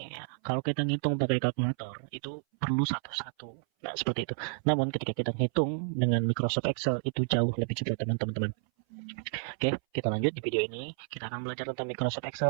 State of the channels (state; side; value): silent; left; 57 dB below the other